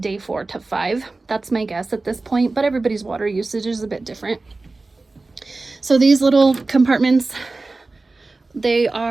day 4 to 5. That's my guess at this point, but everybody's water usage is a bit different. So these little compartments, they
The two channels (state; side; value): quieter; left; 3.4 dB